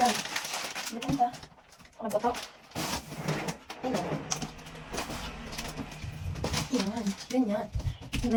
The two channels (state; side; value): identical; both; correlation 1.00